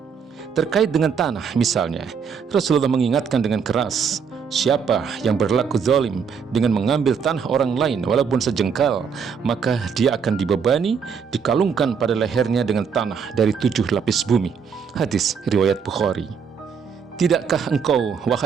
Terkait dengan tanah misalnya, Rasulullah mengingatkan dengan keras, siapa yang berlaku zalim dengan mengambil tanah orang lain walaupun sejengkal, maka dia akan dibebani, dikalungkan pada lehernya dengan tanah dari 7 lapis bumi. Hadis riwayat Bukhari. Tidakkah engkau,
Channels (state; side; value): quieter; left; 6.4 dB